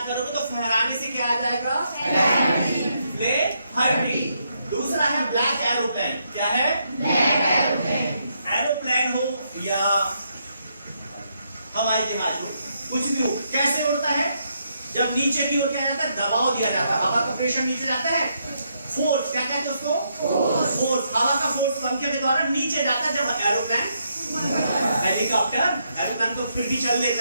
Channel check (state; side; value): inverted; both; correlation -0.78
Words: करोगे तो फहराने से क्या आ जाएगा? फ्ले हर्टिंग। दूसरा है ब्लैक एरोप्लेन। क्या है? एरोप्लेन हो या हवाई जहाज हो, कुछ भी हो, कैसे उड़ता है? जब नीचे की ओर क्या जाता है? दबाव दिया जाता है, हवा का प्रेशर नीचे जाता है, फोर्स। क्या कहते हैं उसको? फोर्स। हवा का फोर्स पंखे के द्वारा नीचे जाता है। जब एरोप्लेन, हेलीकॉप्टर, एरोप्लेन तो फिर भी चल